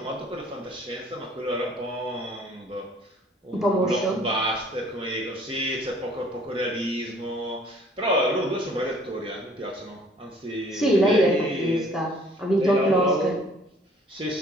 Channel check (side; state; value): both; normal; correlation 0.56